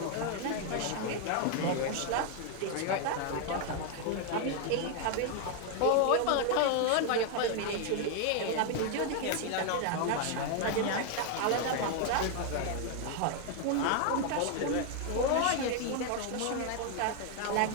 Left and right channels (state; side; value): different; both; correlation 0.00